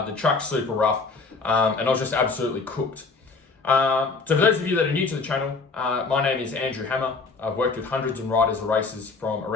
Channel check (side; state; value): right; quieter; 4.2 dB